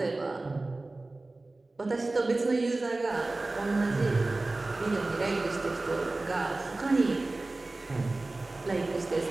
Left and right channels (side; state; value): left; quieter; 3.1 dB